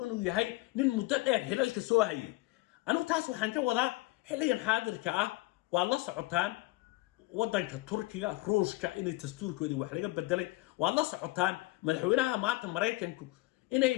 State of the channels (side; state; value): right; quieter; 20.8 dB